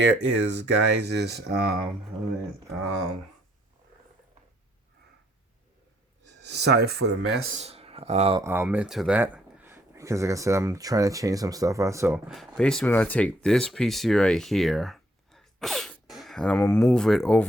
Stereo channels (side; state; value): both; normal; correlation 0.69